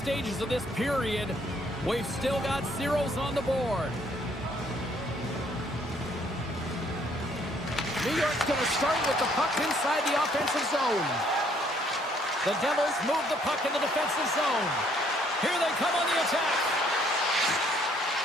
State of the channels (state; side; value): normal; both; correlation 0.65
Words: of this period. We've still got zeros on the board. New York's going to start with the puck inside the offensive zone. The Devils move the puck in the defensive zone. Here they come on the attack.